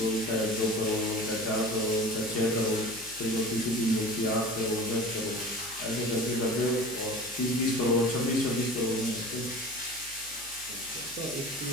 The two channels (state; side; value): noise; left; hum, 23 dB below the sound